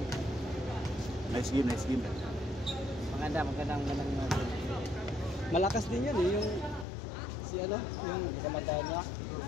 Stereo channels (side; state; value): right; drops out; at 6.9 s